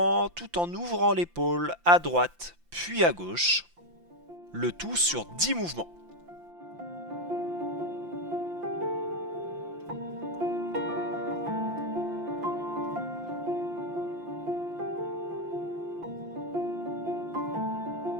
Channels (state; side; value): late; left; 5.8 ms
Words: tout en ouvrant l'épaule à droite, puis à gauche. Le tout sur 10 mouvements.